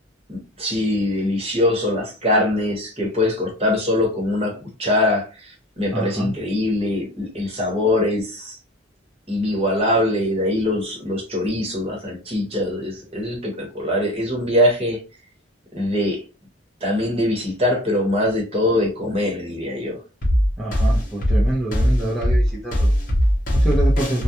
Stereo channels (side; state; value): both; normal; correlation 0.50